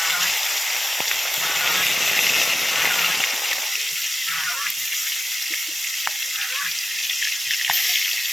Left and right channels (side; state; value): right; noise; hiss, 8 dB below the sound